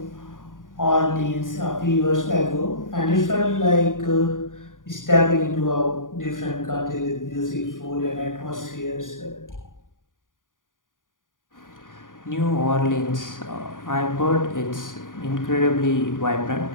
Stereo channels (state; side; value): late; right; 0.89 ms